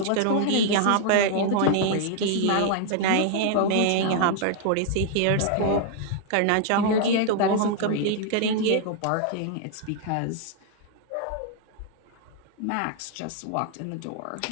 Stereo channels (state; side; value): different; both; correlation 0.00